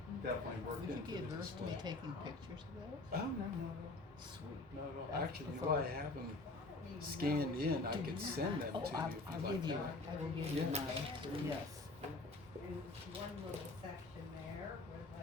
definitely worked Would you into get the her to display. be taking pictures of those? Oh, no. Sweet. No, no. Actually, you know, Before- I have them scanned in. I could send them to you if I'll you'd like give you, that. I will give you Yeah. mine, yes. And one little section there would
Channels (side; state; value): right; quieter; 3.1 dB